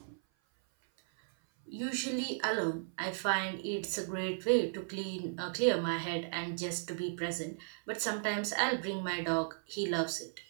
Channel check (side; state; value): left; silent; 54 dB below the other